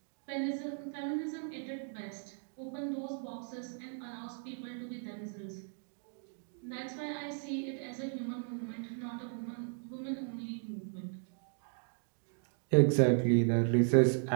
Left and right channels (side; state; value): left; silent; 54 dB below the other